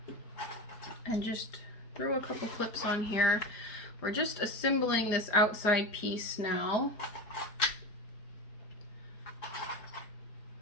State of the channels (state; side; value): late; right; 4.9 ms